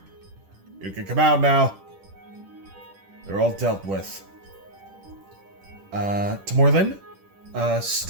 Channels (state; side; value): late; left; 10 ms